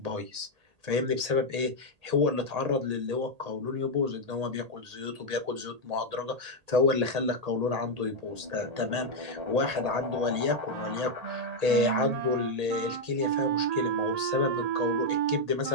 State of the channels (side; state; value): left; late; 1.8 ms